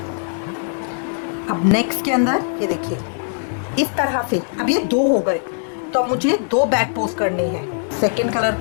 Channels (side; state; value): right; silent; digital silence